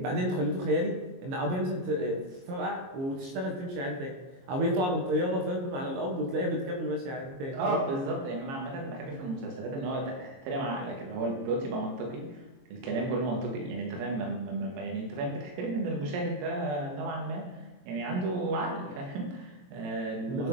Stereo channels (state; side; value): late; left; 22 ms